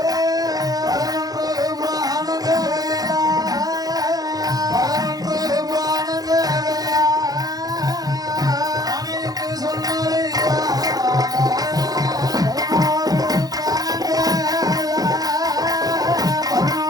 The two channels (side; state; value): left; late; 0.18 ms